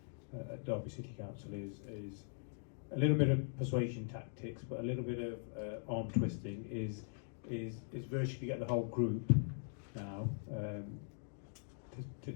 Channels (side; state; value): right; silent; digital silence